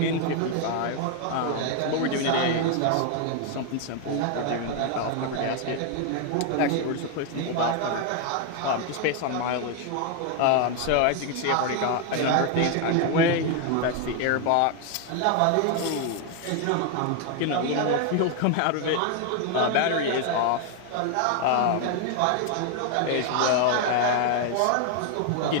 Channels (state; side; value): different; both; correlation 0.01